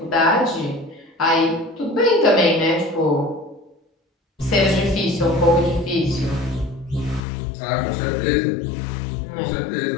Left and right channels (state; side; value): drops out; right; at 7.2 s